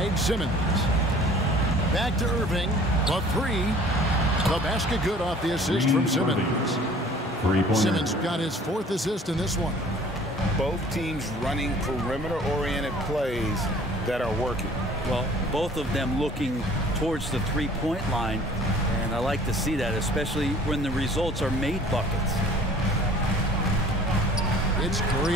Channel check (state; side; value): normal; both; correlation 0.51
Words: Simmons. Back to Irving. The 3. The basket good off the assist from Simmons. Simmons got his 4th assist in this one. Both teams running perimeter-oriented plays that are working. Well, both of them looking towards the three-point line, and I like to see that, especially when the results are made buckets. It's